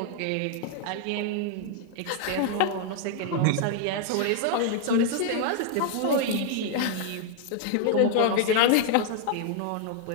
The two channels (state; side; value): different; both; correlation 0.00